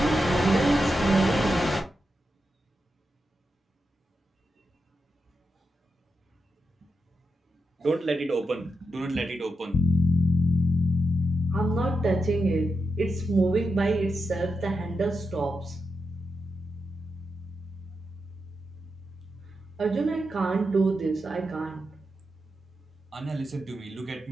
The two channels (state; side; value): normal; both; correlation 0.85